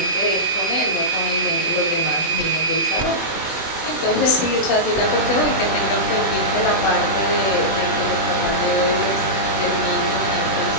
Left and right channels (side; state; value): right; late; 21 ms